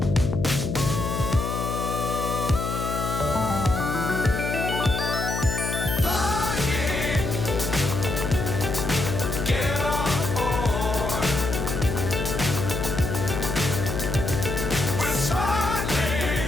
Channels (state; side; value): noise; left; hum, 2 dB below the sound